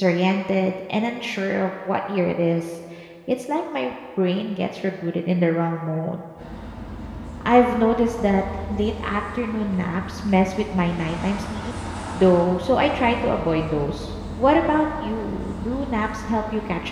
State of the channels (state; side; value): identical; both; correlation 1.00